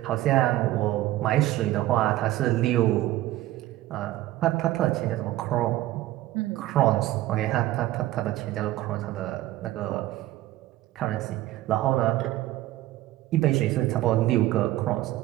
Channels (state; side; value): quieter; left; 15.6 dB